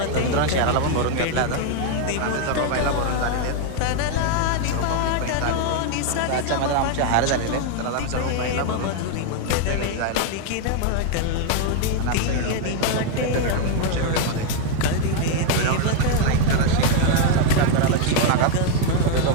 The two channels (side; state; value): both; different; correlation 0.00